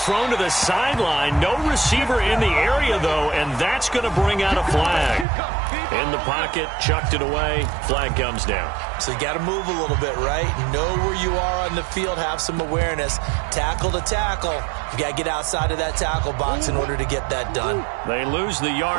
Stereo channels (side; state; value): left; drops out; at 5.2 s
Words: to the sideline. No receiver in the area, though, and that's going to bring out a flag. In the pocket, chucked it away, flag comes down. So you got to move a little bit, right? Know where you are on the field, have some awareness. Tackle to tackle. You got to get outside of that tackle box in order to get that done. They lose the